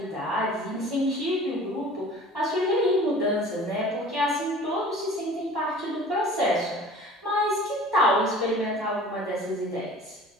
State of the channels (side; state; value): both; normal; correlation 0.44